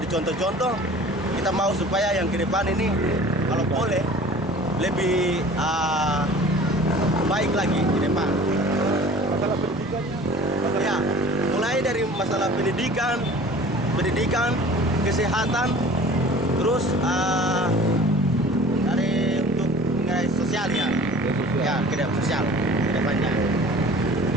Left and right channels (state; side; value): normal; both; correlation 0.45